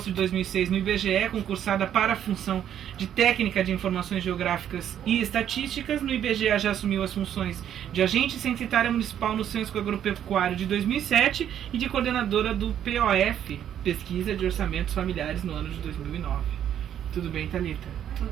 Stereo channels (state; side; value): quieter; left; 10.0 dB